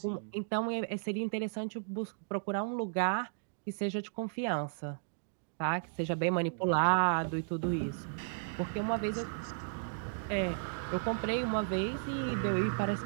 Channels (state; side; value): silent; left; digital silence